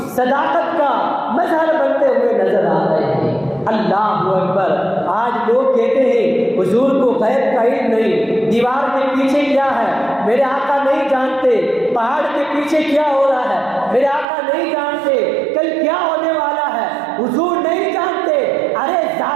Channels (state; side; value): drops out; left; at 14.2 s